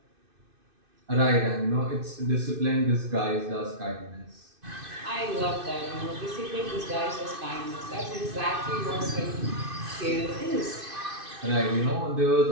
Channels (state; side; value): late; left; 2.5 ms